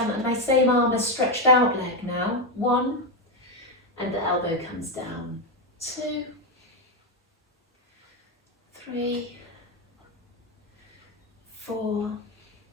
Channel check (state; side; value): normal; both; correlation 0.07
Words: same arm is stretched out leg now. 1, and the elbow comes down. 2, 3, 4,